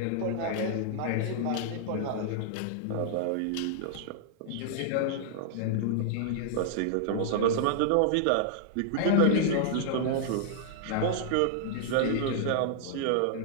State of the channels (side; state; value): both; different; correlation -0.01